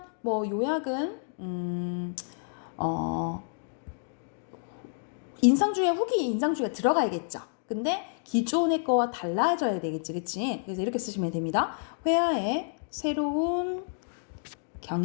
뭐 요약은 인상주의와 후기 인상주의가 들어가야겠죠. 근데 기존의 거와 달라져야 되겠지. 그치? 그래서 이렇게 쓰시면 됩니다. 회화의 새로운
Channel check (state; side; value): silent; right; digital silence